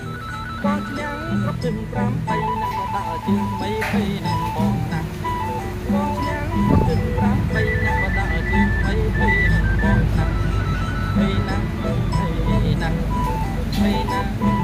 បងឈ្នះគ្រប់ជើង5 3ណាស់ក៏ដើរជើងថ្មីភ័យនឹងបងណាស់បងឈ្នះគ្រប់ជើង5 3ណាស់ក៏ដើរជើងថ្មីភ័យនឹងបងណាស់ភ័យណាស់ភ័យណាស់ភ័យណាស់ភ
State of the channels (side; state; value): both; identical; correlation 1.00